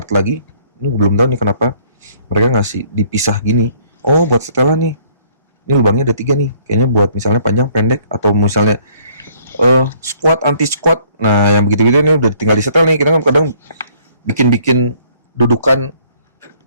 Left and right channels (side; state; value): both; inverted; correlation -0.61